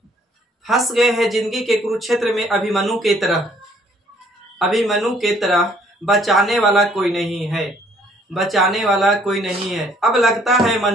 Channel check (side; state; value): both; normal; correlation 0.62